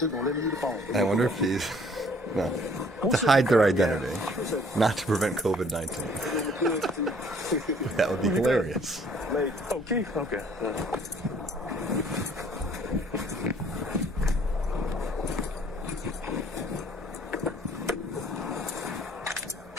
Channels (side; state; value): both; normal; correlation 0.58